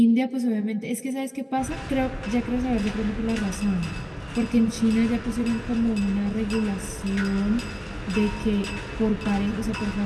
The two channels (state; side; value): identical; both; correlation 1.00